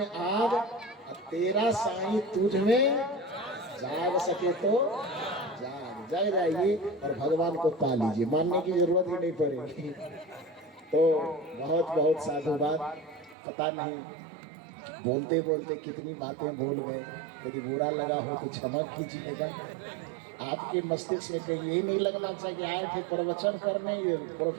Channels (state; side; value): drops out; left; at 13.4 s